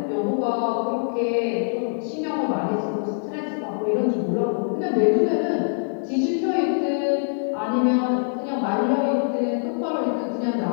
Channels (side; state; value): right; silent; digital silence